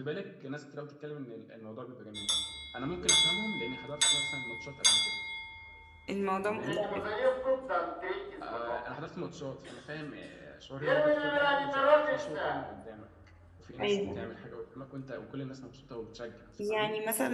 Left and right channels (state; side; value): identical; both; correlation 1.00